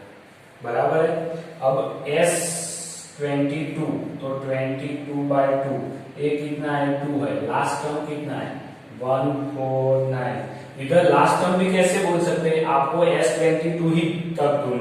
बराबर है। अब s22 तो 22/2, a कितना है 2 है, लास्ट टर्म कितना है 149, इधर लास्ट टर्म भी कैसे बोल सकते हैं, आपको S22 ही तब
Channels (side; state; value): both; identical; correlation 1.00